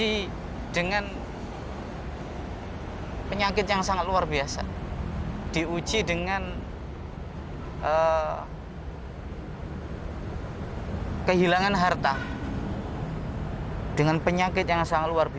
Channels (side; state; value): both; identical; correlation 1.00